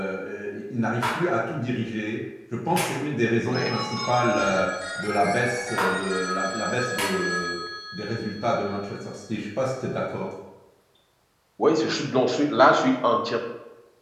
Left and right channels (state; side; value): identical; both; correlation 1.00